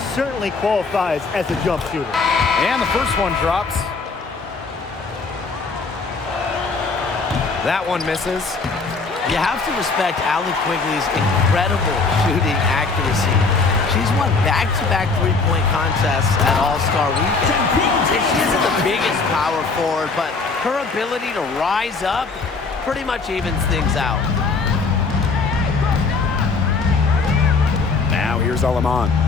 certainly qualifies as a jump shooter. And the first one drops. That one misses. You have to respect Allie Quigley's incredible shooting accuracy. She's won back-to-back three-point contests at All-Star Weekend. And she isn't the biggest power forward, but her ability to rise up pretty much evens things out. Now here's Alaman.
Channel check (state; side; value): quieter; right; 4.3 dB